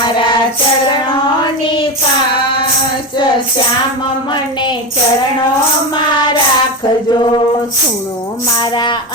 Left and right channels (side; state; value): both; normal; correlation 0.18